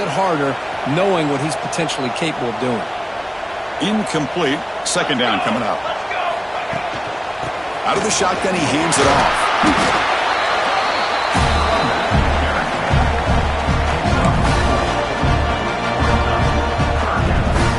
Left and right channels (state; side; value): identical; both; correlation 1.00